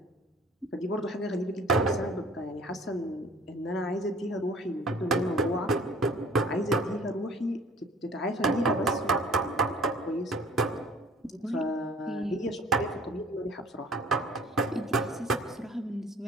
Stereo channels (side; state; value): both; normal; correlation 0.51